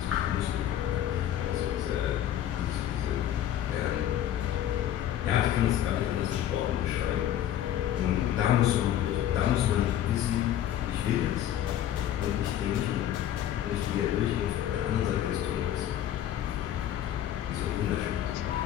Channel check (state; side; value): quieter; right; 11.3 dB